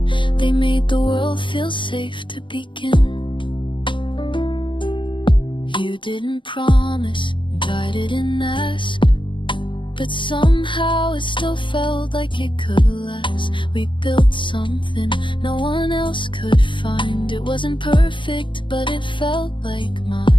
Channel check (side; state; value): right; late; 0.24 ms